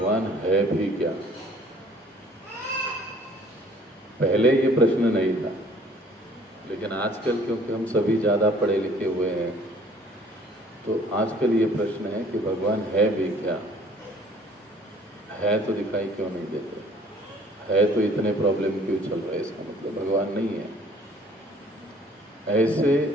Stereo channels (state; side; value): normal; both; correlation 0.55